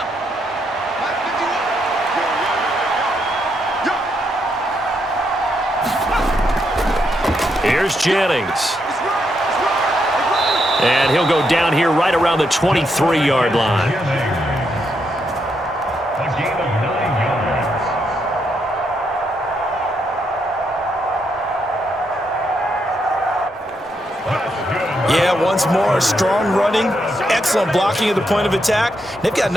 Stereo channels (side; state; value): both; normal; correlation 0.79